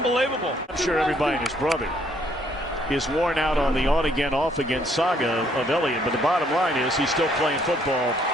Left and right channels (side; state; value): both; normal; correlation 0.67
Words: I'm sure everybody and his brother is worn out on the on-again, off-again saga of Elliott, but the bottom line is he's still playing football